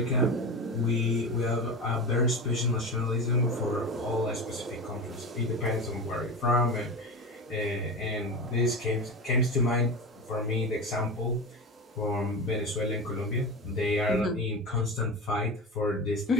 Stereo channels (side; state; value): both; normal; correlation 0.25